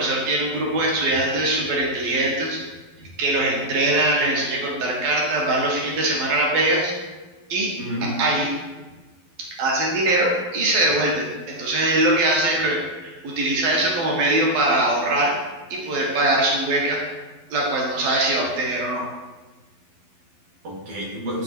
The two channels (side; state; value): left; late; 12 ms